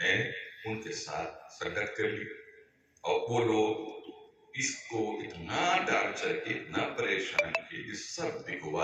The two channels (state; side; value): identical; both; correlation 1.00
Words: ان کے ساتھ سنگت کر لی. اور وہ لوگ اس کو اتنا ٹارچر کی، اتنا پریشان کی کہ سب